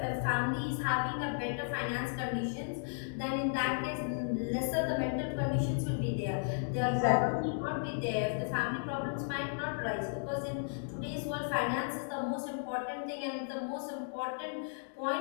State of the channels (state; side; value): silent; right; digital silence